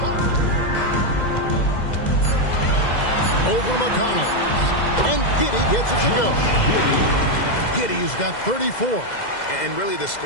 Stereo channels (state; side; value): late; right; 2.0 ms